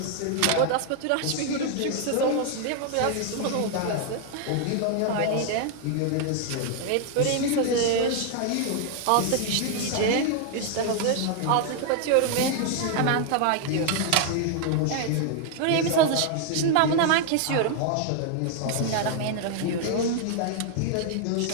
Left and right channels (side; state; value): both; different; correlation 0.00